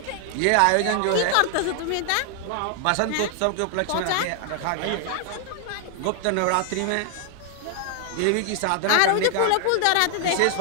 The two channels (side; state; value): both; different; correlation 0.00